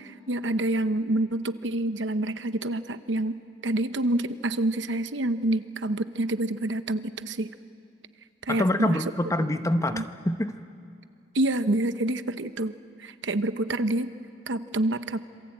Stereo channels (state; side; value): normal; both; correlation 0.59